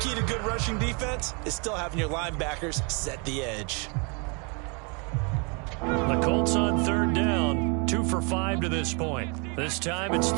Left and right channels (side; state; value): left; quieter; 33.4 dB